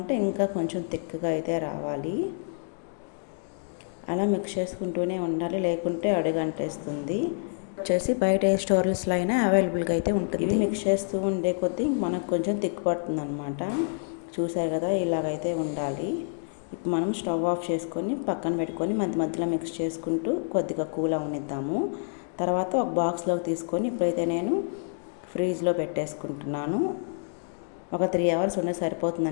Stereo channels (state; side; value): silent; right; digital silence